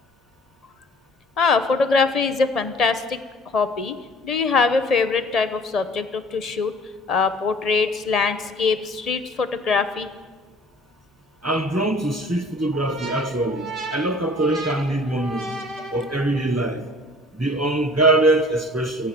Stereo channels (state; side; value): normal; both; correlation 0.50